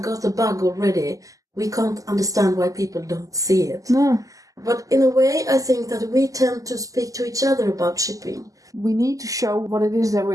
got the bug already, we can't understand why people don't see it. No. But in a way, I think that we tend to speak to each other about shipping. We need to show what it is that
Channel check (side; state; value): left; late; 0.17 ms